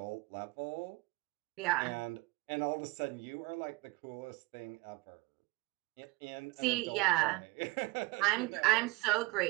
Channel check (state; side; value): quieter; left; 24.2 dB